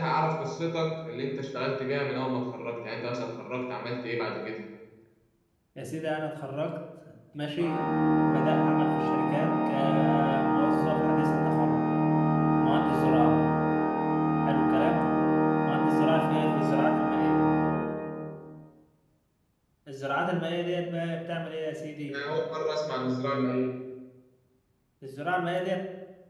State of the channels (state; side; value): identical; both; correlation 1.00